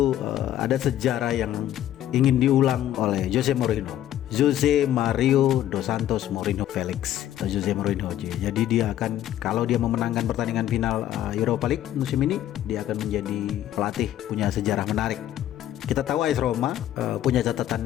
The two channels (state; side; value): quieter; right; 12.2 dB